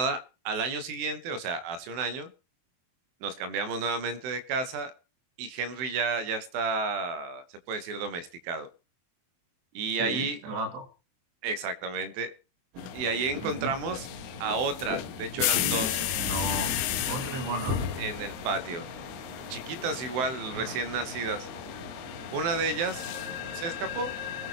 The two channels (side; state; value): left; late; 23 ms